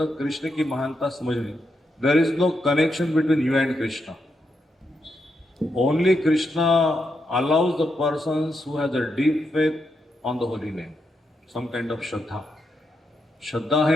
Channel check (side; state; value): both; normal; correlation 0.83